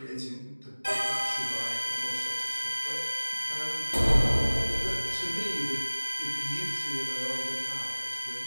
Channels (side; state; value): both; inverted; correlation -1.00